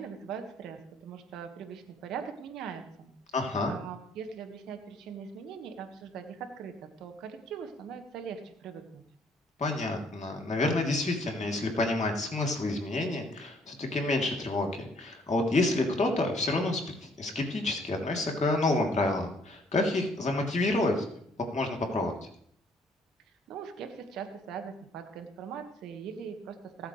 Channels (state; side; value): normal; both; correlation 0.63